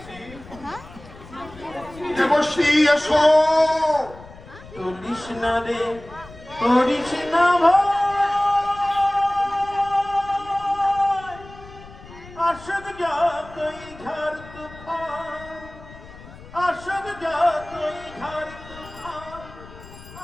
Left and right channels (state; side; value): noise; left; rumble, 18 dB below the sound